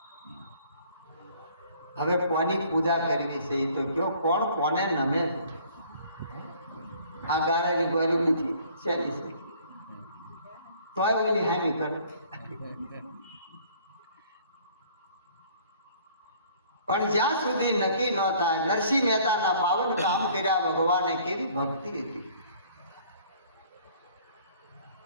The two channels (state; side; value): inverted; both; correlation -0.55